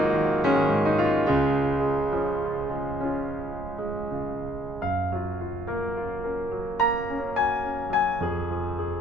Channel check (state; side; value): noise; right; rumble, 12 dB below the sound